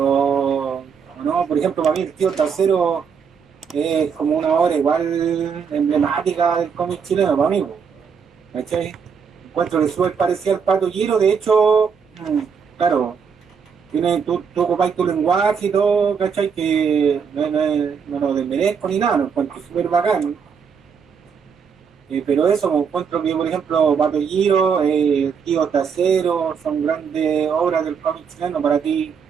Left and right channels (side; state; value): left; quieter; 6.5 dB